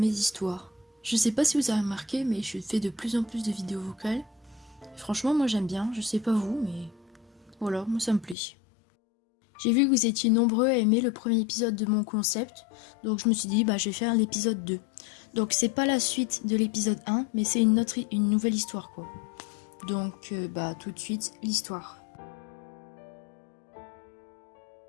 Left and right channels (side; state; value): right; drops out; at 8.3 s